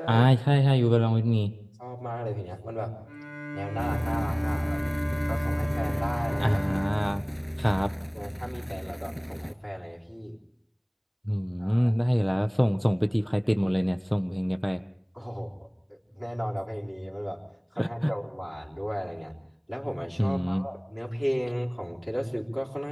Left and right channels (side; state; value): both; identical; correlation 1.00